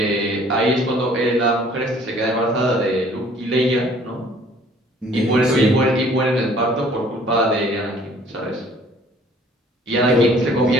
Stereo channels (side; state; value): both; normal; correlation 0.56